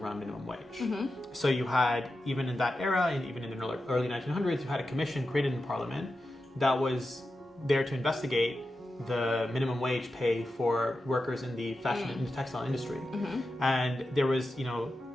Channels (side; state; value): both; normal; correlation 0.91